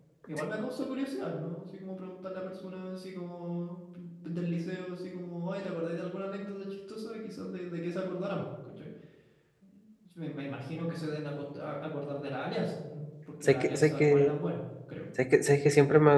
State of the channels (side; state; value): both; identical; correlation 1.00